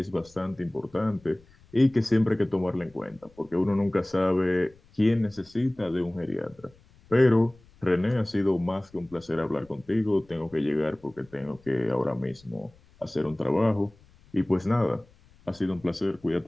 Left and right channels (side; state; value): left; noise; rumble, 28 dB below the sound